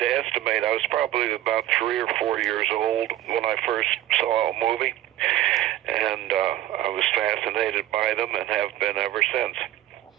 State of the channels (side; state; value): left; quieter; 13.7 dB